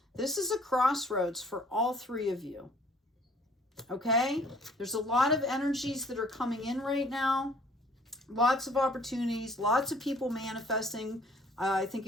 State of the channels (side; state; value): both; normal; correlation 0.56